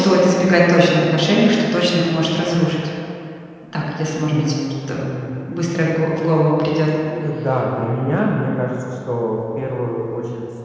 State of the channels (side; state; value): both; identical; correlation 1.00